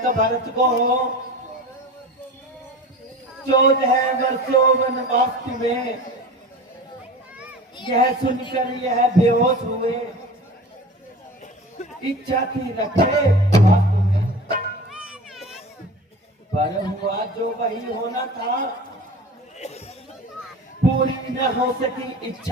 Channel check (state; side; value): normal; both; correlation 0.36